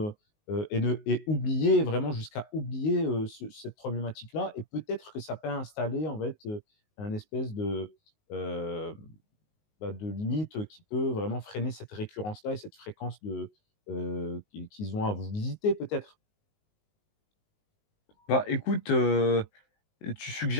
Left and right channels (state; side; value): late; right; 19 ms